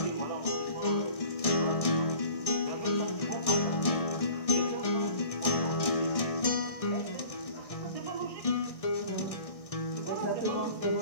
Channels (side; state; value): right; late; 1.6 ms